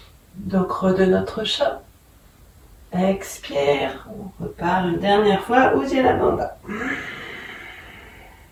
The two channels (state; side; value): identical; both; correlation 1.00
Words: Dos creux de notre chat. Expire, on repart une dernière fois, Uddiyana Bandha.